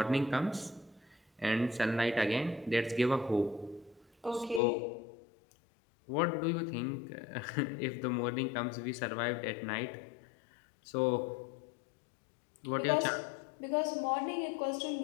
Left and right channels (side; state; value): right; drops out; at 4.6 s